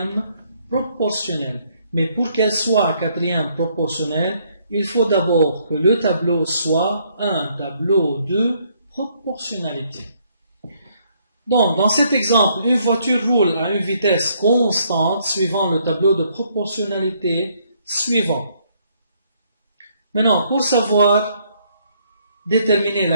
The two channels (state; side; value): inverted; both; correlation -0.69